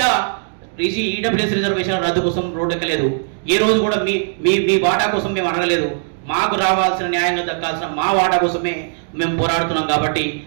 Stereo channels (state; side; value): silent; left; digital silence